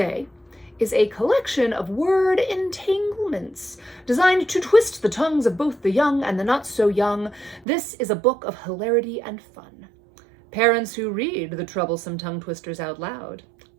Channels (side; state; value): left; drops out; at 7.7 s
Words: is a collection of word entanglements designed to twist the tongues of both the young and the not so young. This is a book of hilarity and fun. Parents who read the troublesome tongue twisters out loud